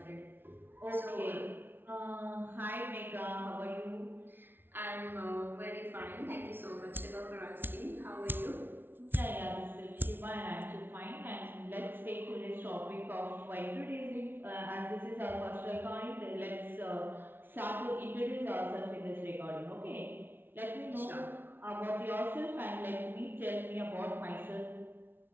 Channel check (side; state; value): left; late; 0.10 ms